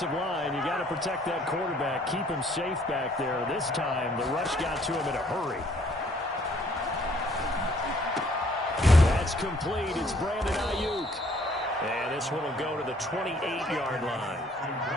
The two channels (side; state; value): both; normal; correlation 0.62